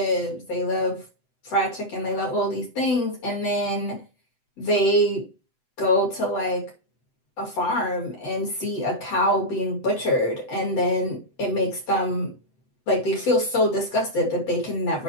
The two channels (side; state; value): right; late; 7.9 ms